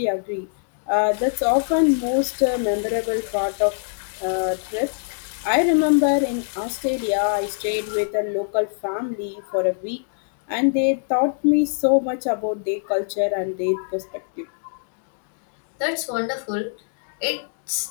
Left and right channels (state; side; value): silent; right; digital silence